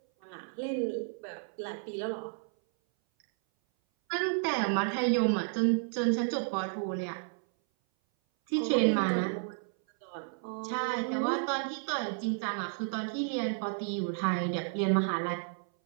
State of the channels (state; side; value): silent; left; 57 dB below the other